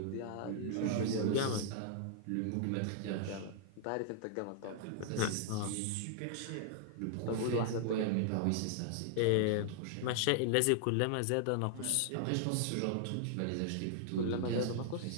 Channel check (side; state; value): both; different; correlation -0.01